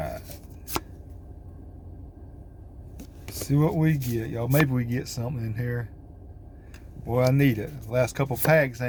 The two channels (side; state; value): both; identical; correlation 1.00